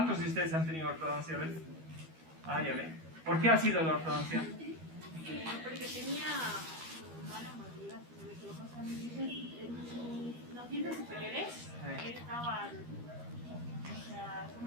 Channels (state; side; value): late; left; 12 ms